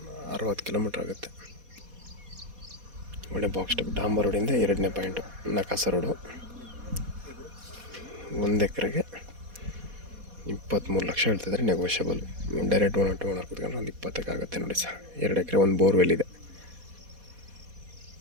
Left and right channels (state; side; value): late; left; 4.2 ms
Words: 60 kilometre ಆಗುತ್ತೆ. ಒಳ್ಳೆ ಬಾಕ್ಸ್ ಟೈಪ್ ಡಾಂಬರ್ ರೋಡಿಂದ 2ನೇ ಪಾಯಿಂಟು ನಕಾಸ ರೋಡು. 1 ಎಕರೆಗೆ 23 ಲಕ್ಷ ಹೇಳ್ತಿದ್ದಾರೆ, negotiable. Direct owner to owner ಕೂತ್ಕೊಂಡ್ರೆ ಒಂದು 20ಕ್ಕೆ ಆಗುತ್ತೆ ನೋಡಿ ಸರ್. 2 ಎಕರೆ, 1 ಬೋರ್ವೆಲ್ ಇದೆ